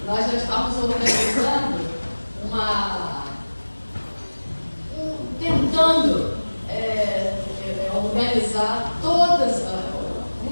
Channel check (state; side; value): inverted; both; correlation -1.00